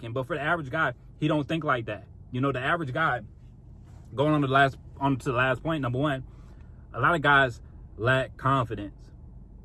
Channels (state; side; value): identical; both; correlation 1.00